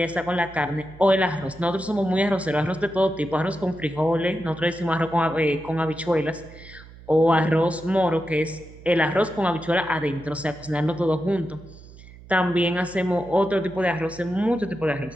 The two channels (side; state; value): right; noise; hum, 19 dB below the sound